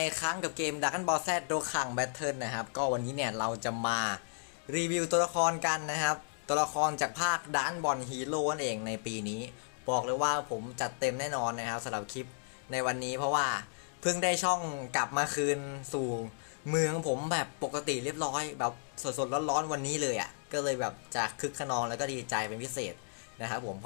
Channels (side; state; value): right; silent; digital silence